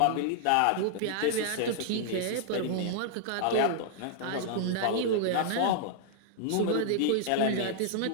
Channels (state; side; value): different; both; correlation -0.01